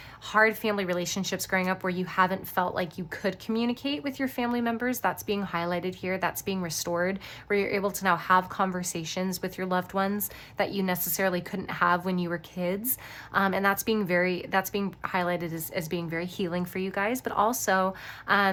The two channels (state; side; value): identical; both; correlation 1.00